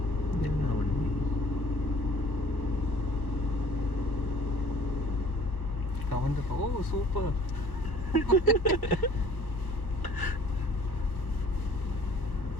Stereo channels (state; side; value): late; right; 1.1 ms